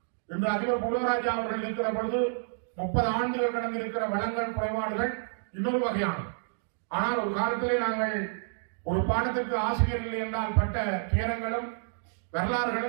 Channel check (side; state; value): left; silent; digital silence